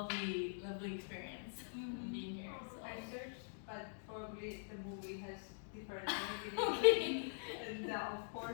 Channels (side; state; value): right; silent; digital silence